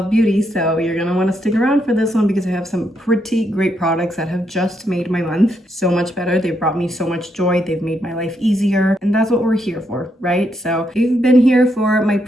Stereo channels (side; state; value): both; normal; correlation 0.78